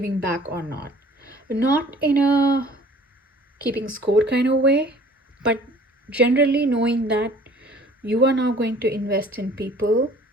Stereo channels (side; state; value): both; normal; correlation 0.51